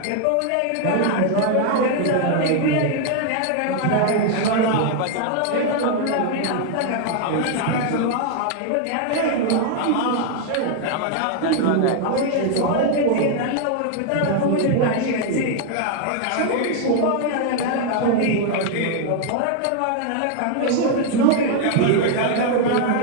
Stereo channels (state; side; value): different; both; correlation 0.00